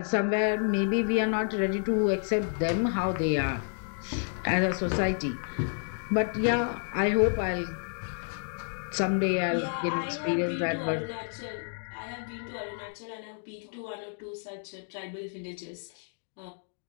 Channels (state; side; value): silent; right; 58 dB below the other